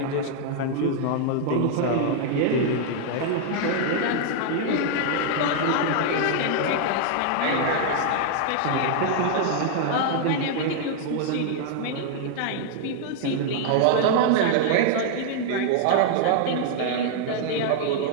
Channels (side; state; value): both; different; correlation 0.00